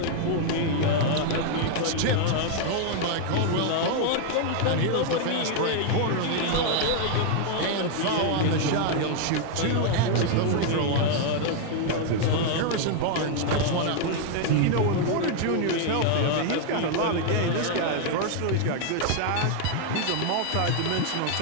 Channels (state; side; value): different; both; correlation 0.00